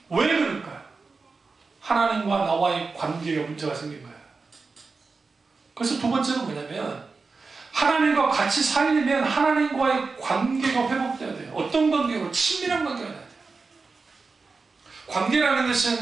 왜 그럴까요? 하나님과 나와의 관계에 문제가 생긴 거예요. 그래서 두 번째는 뭐냐면, 하나님과 같이 살려면 하나님과의 관계가 회복돼야 돼요. 어떤 관계로? 친밀한 관계가 돼야 돼요. 관계라는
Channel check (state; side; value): quieter; left; 4.3 dB